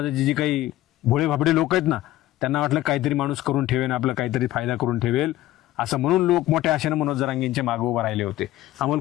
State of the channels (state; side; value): quieter; right; 15.3 dB